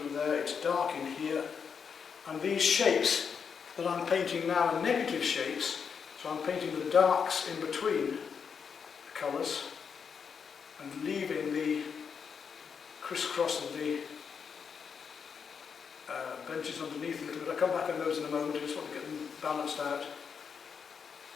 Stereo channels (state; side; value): quieter; right; 6.5 dB